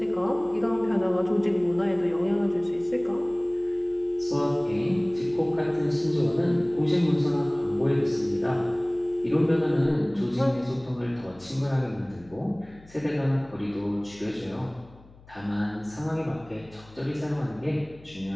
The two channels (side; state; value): left; noise; hum, 24 dB below the sound